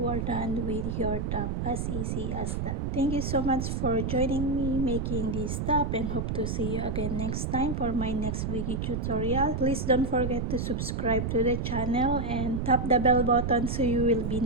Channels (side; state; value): right; noise; rumble, 1 dB below the sound